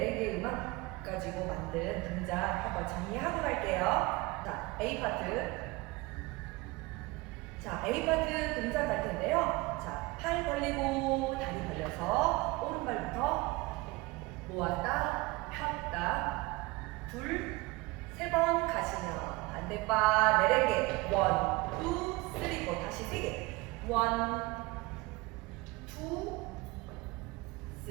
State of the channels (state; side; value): quieter; left; 22.8 dB